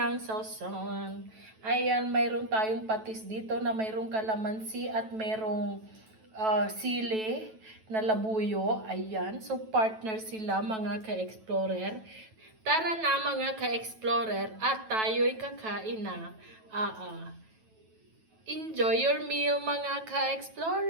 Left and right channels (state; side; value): late; left; 9.2 ms